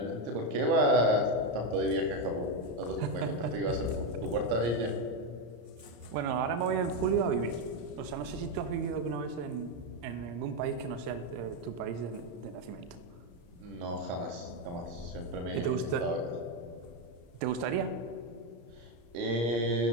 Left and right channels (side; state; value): left; late; 34 ms